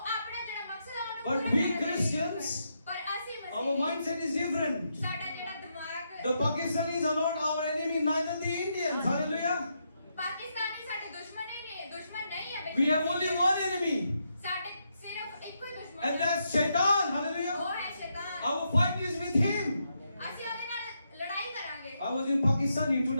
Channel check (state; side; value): inverted; both; correlation -0.81